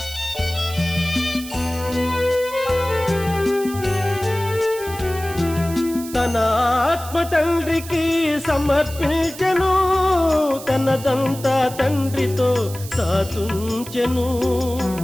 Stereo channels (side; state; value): right; noise; hiss, 14 dB below the sound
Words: తన ఆత్మ తండ్రికి సమర్పించెను, తనదంతా తండ్రితో సాతుంచెను.